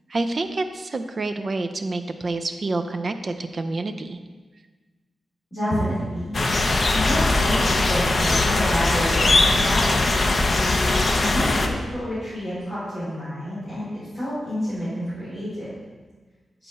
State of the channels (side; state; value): both; normal; correlation 0.91